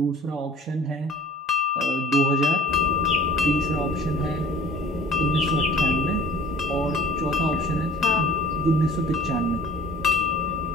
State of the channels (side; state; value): both; normal; correlation 0.46